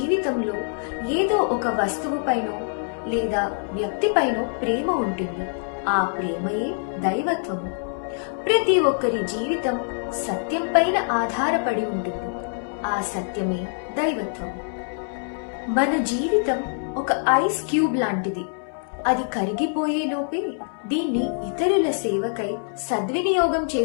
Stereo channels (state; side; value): silent; right; 62 dB below the other